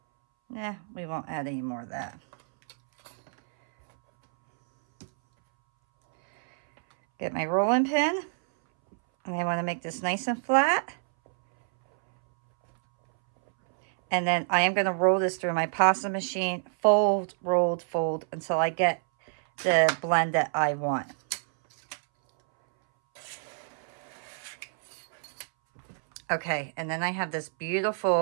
we won't add any more of that. Get my rolling pin, and I want to make this nice and flat. And then I am going to roll this through my pasta machine, fold, rolled, fold, until I get the blend that I want. Okay, and then I have this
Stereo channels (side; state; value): left; silent; 60 dB below the other